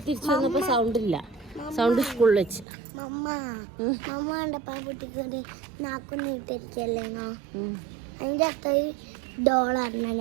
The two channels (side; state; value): left; drops out; at 2.7 s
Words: തിരിച്ചു വന്നപ്പോൾ സൗണ്ട് ഇല്ല. സൗണ്ട് സ്കൂളിൽ വെച്ച് അതിൻ്റെ അത്ര ഡോളായിരുന്നു.